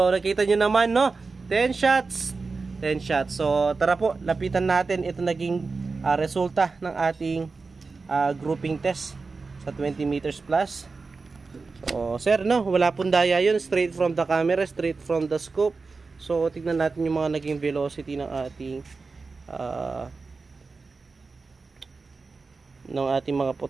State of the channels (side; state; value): left; quieter; 4.2 dB